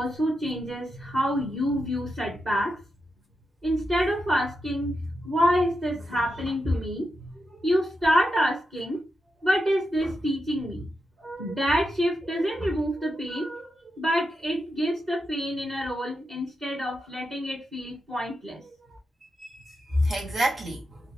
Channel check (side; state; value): both; normal; correlation 0.87